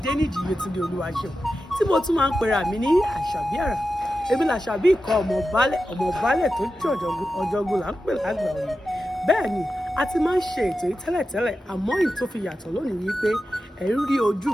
Yétúndé Olúwaṣeun tí mo tún máa ń pera mi ní Àṣàbí Àrà. Èmi làṣàbí ikọ̀ ọmọ baálẹ̀ tó jẹ́ ọ̀jọ̀gbọ́n là ń pè lágbà òye. Bẹ́ẹ̀ ni a ti máa ń ṣe ètò yìí tẹ́lẹ̀tẹ́lẹ̀ àmọ́ èyí tó fi yàtọ̀ lónìí wípé ẹ ń rí ojú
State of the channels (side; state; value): both; normal; correlation 0.91